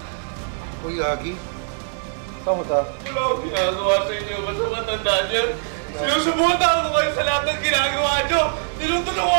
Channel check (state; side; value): silent; left; digital silence